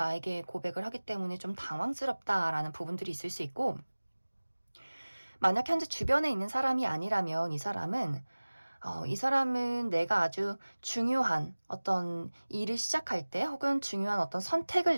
고백을 하기 때문에 좀 당황스럽다라는 부분들이 있을 수 있고, 만약 현재 주변에 있는 사람이 아니라면 이 사람은 내가 아주 중요한 어떤 일을 시작할 때 혹은 중요한 어떤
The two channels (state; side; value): inverted; both; correlation -1.00